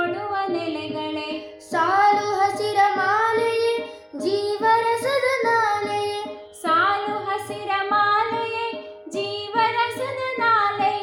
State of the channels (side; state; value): both; identical; correlation 1.00